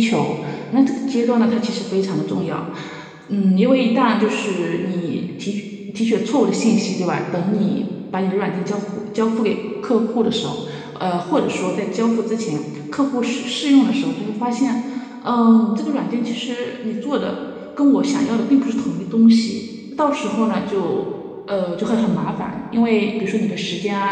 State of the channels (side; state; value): both; identical; correlation 1.00